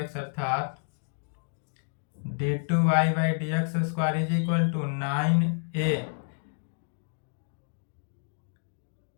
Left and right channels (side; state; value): right; silent; digital silence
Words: अर्थात d two y by D x square is equal to 9a